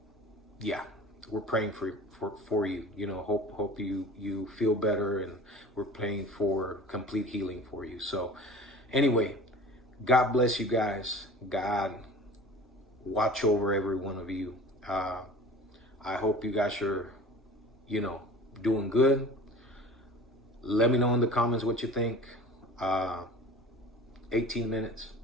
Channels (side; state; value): both; normal; correlation 0.41